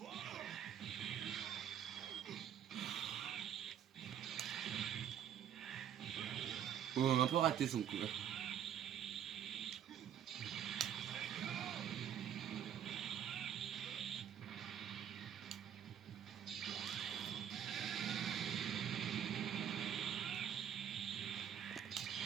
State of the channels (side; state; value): left; quieter; 9.4 dB